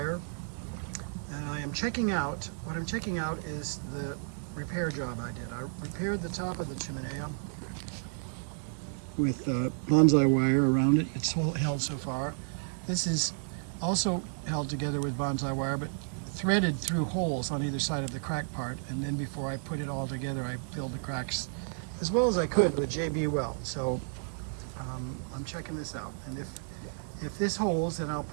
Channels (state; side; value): silent; left; digital silence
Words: and I am checking out. What I'm checking out is the repair job I did. I repaired the top of the Chimenea with bonsai wire around it. It's held so far. This is also held together with bonsai wire, but threaded through holes on either side of the crack part. And then before I put it all together, I filled the cracks as well as I could with JB weld. So I'm checking this out. And if this holds, then I'll